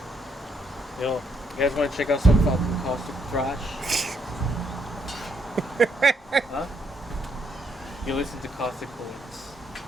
Yo, you guys want to check out some fucking caustic thrash? Huh? You listen to Caustic Points.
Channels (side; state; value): both; normal; correlation 0.73